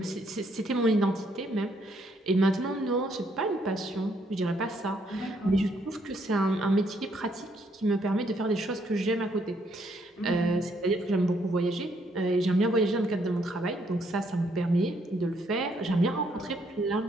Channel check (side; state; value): both; normal; correlation 0.71